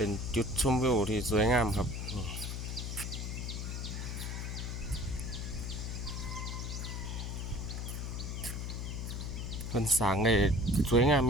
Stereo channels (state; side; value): noise; left; hum, 4 dB below the sound